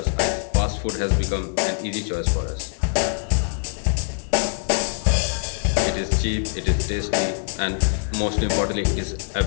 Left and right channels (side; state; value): right; silent; 60 dB below the other